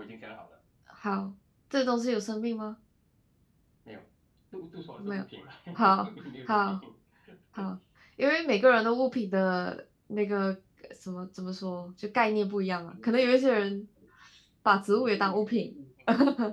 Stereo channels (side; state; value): both; identical; correlation 1.00